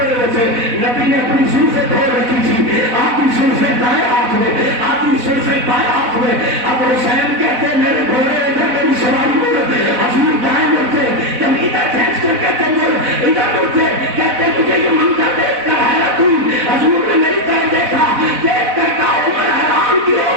ہوئے تھے، نبی نے اپنی زلفیں دھو رکھی تھی، آدھی زلفیں دائیں ہاتھ میں، آدھی زلفیں بائیں ہاتھ میں، اب حسین کہتے ہیں میرے گھوڑے ادھر میری سواری مڑ، حضور دائیں مڑتے، جب ادھر کھینچ کر کہتے مڑ، ادھر مڑتے، کہتے مجھے یہ منظر دیکھ کر حیرت ہوئی، حضور نے میری طرف دیکھا، دیکھ کر کہا عمر حیران کیوں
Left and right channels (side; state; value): left; late; 4.0 ms